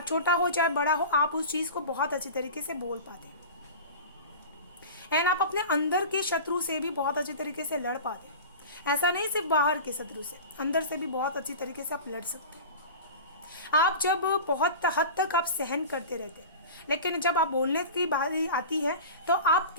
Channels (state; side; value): inverted; both; correlation -0.33